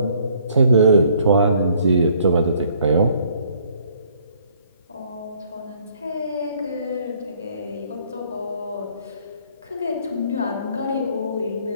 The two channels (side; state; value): both; inverted; correlation -0.62